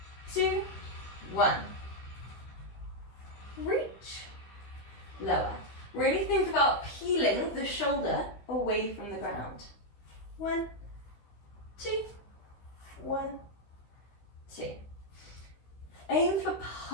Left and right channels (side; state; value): right; late; 16 ms